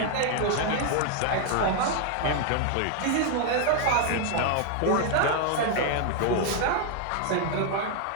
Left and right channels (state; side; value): different; both; correlation 0.00